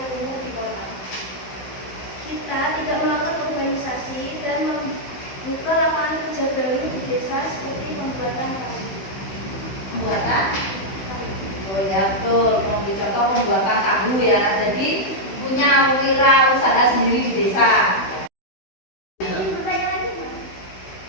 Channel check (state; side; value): late; right; 16 ms